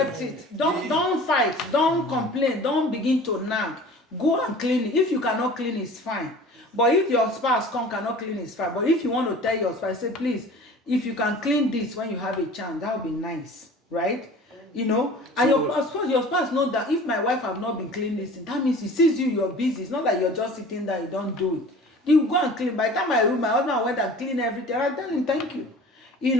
it. Don't fight, don't complain, don't begin to nag. Go and clean it. If you cannot clean, it's fine. But if your spouse cannot clean, it's fine. But if you want to tell your spouse, say, please, if you can clean this when you have a chance, that would be nice, right? You know, and your spouse knows that if my wife have not been cleaning this, that means he sees you're busy. It's not like you're just sitting there, you don't do it. You go and clean. By the time my husband went and clean everything, I tell him thank you. You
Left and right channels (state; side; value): normal; both; correlation 0.43